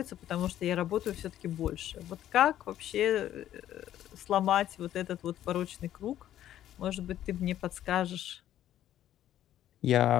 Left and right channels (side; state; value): right; quieter; 12.0 dB